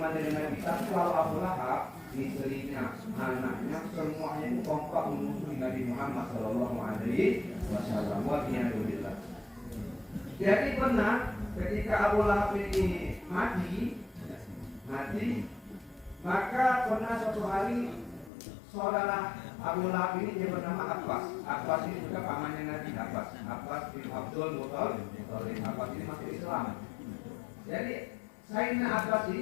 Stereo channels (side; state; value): right; drops out; at 18.3 s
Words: dengan Nabi. Tapi kalau Abu Lahab, istrinya, anaknya, semuanya itu kompak memusuhi Nabi Muhammad Sallallahu Alaihi Wasallam. Walhamdulillah. Jadi benar ketika Abu Lahab ini mati, maka pernah suatu hari saudara Abu Lahab ini dia bernama Abbas. Abbas ini juga pamannya Nabi. Abbas bin Abdul Muttalib. Abbas ini masuk Islam. Jadi Sayyidina Abbas